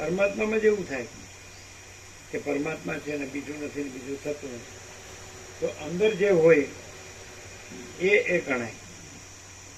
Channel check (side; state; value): both; identical; correlation 1.00